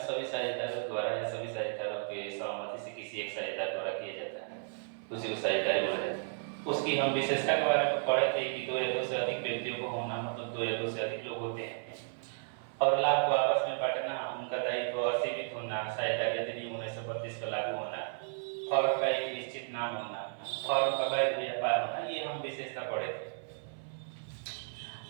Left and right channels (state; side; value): silent; left; 55 dB below the other